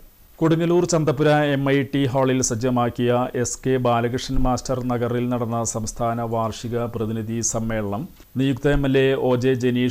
കൊടുങ്ങല്ലൂർ ചന്തപുര MIT ഹാളിൽ സജ്ജമാക്കിയ SK ബാലകൃഷ്ണൻ മാസ്റ്റർ നഗറിൽ നടന്ന സംസ്ഥാന വാർഷിക പ്രതിനിധി സമ്മേളനം നിയുക്ത MLA OJ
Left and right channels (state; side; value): identical; both; correlation 1.00